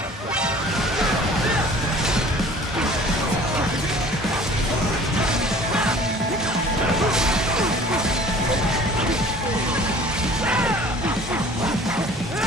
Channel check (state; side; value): normal; both; correlation 0.48